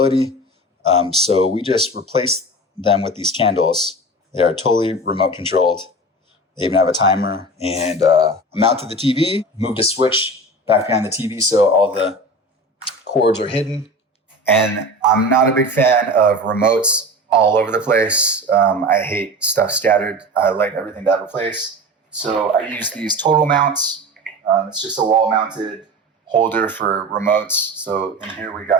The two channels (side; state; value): both; normal; correlation 0.32